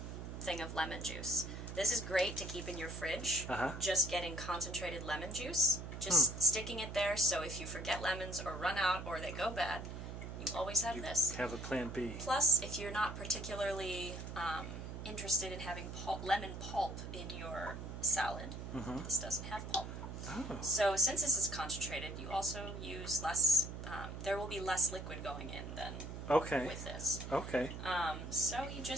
thing of lemon juice. This is great to keep in your fridge, just getting concentrated lemon juice, just sticking it there so if you forget lemons or run out or they go bad, you always have this. Have a plan B. Plus, if you're not particularly interested in having lemon pulp in your salad, this doesn't have pulp. Oh. So since this is concentrated, you also use less, there will be less liquid going in than with this. Okay. So you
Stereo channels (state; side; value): noise; right; hum, 8 dB below the sound